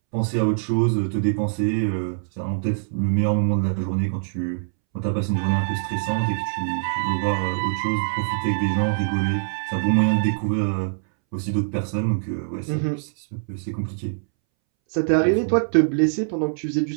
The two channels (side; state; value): left; silent; 63 dB below the other